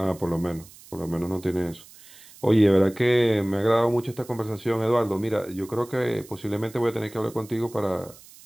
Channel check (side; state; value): right; noise; hiss, 22 dB below the sound